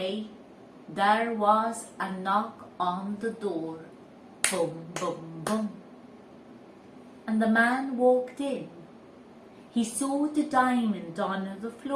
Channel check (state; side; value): identical; both; correlation 1.00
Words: there was a knock on the door. Boom, boom, boom. And the man walked in. He saw the diamond on the